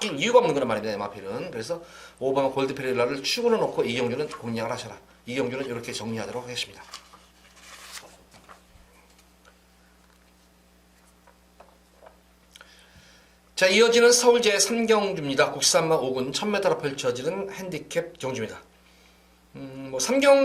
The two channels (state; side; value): identical; both; correlation 1.00